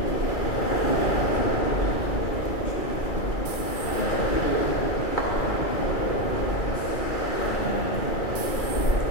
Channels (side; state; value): right; late; 2.3 ms